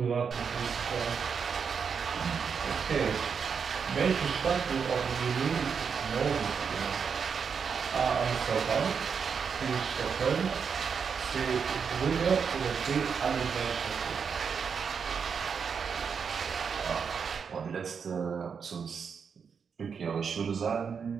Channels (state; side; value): quieter; left; 6.3 dB